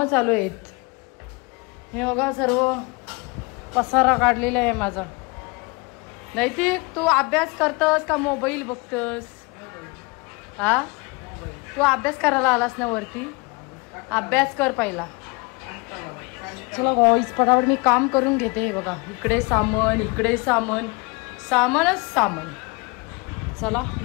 चालू आहेत. हे बघा सर्व पसारा काढलेला आहे माझा. नैतिक तू अभ्यास करतस का मोबाईल बघतस. हा तू अभ्यास करायला आलास ना वरती. अभ्यास कर पहिला. चला गाईस पटापट मी काम करून घेते. हे बघा इकडे सामान इकडे सामान सामानच सामान. चला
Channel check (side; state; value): right; quieter; 27.6 dB